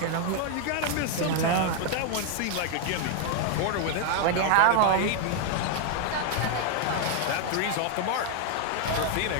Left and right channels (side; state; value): both; different; correlation 0.01